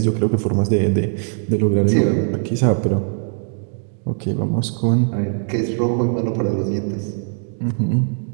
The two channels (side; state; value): left; silent; 66 dB below the other